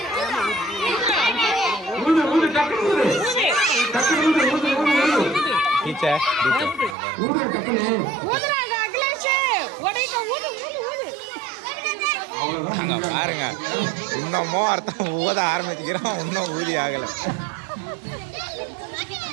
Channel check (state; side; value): drops out; left; at 7.0 s